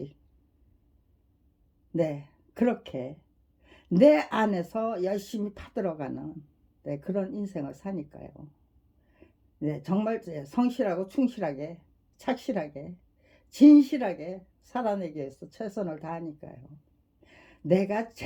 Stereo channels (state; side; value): identical; both; correlation 1.00